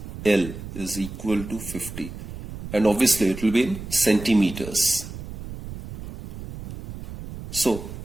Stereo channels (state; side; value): noise; right; rumble, 11 dB below the sound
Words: l is equal to 50, and obviously it will be in centimeters. So